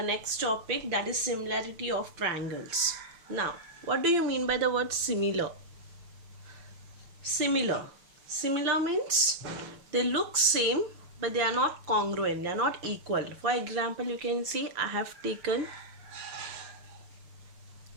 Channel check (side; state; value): left; late; 5.8 ms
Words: next topic, that is similarity of triangles. Now, what do you mean by the word similar? Similar means they look same but they are not congruent, they are not equal. For example, you can see I have taken